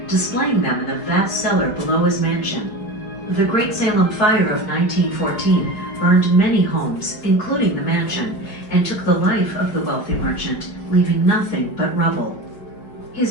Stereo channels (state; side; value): late; right; 4.7 ms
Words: displaying them in the vast cellar below his mansion. The Great Salem Fire of 1914 burned many homes, including the mansion, and took the life of the wealthy merchant, leaving nothing but rubble.